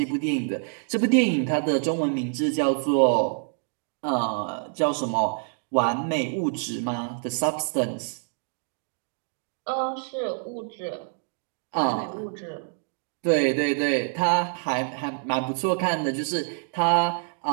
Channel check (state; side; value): silent; left; digital silence